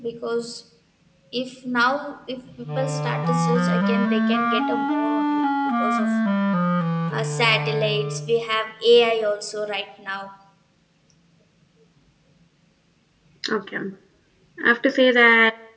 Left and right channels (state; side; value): identical; both; correlation 1.00